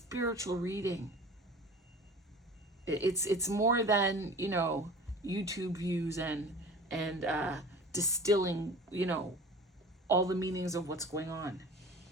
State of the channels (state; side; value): normal; both; correlation 0.41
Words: reading. It's more than, YouTube views and distilling, all the meanings of what's going on.